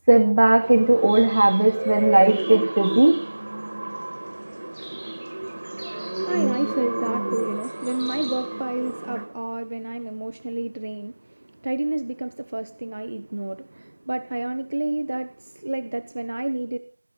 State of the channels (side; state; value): both; inverted; correlation -1.00